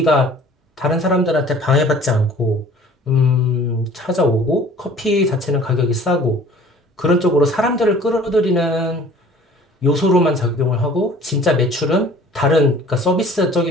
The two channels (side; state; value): both; normal; correlation 0.49